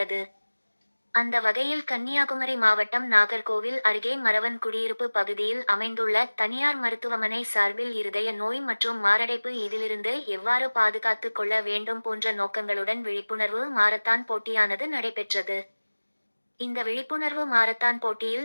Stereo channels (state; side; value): inverted; both; correlation -1.00